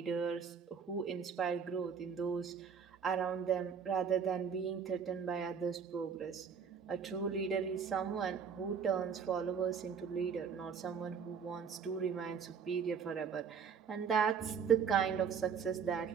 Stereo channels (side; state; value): left; quieter; 6.7 dB